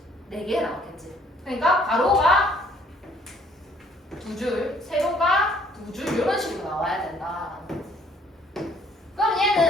4개 나왔겠지. 그러니까 가로가 2줄, 세로가 2줄 이런 식으로 나와야 된다. 그럼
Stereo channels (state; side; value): normal; both; correlation 0.61